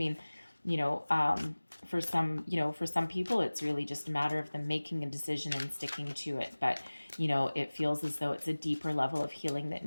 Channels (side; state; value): both; inverted; correlation -1.00